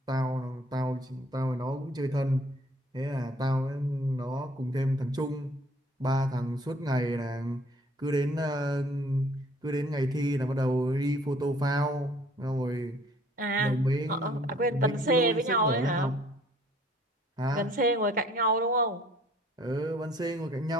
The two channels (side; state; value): both; normal; correlation 0.57